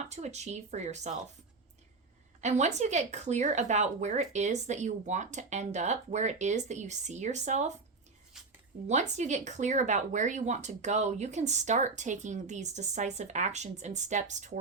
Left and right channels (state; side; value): quieter; left; 4.0 dB